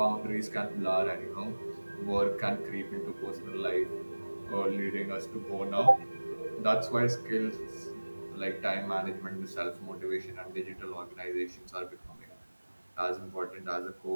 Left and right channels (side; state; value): both; inverted; correlation -1.00